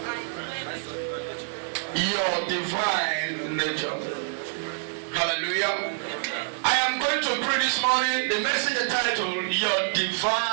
Your divine nature. Hallelujah. I am going to pray this morning. The message titled Your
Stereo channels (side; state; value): left; silent; digital silence